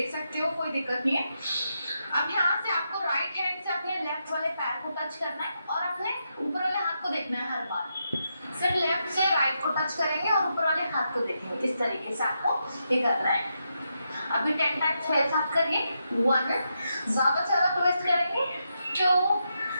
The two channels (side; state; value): both; inverted; correlation -0.84